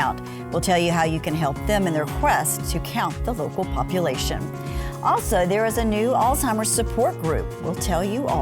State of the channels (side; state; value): both; identical; correlation 1.00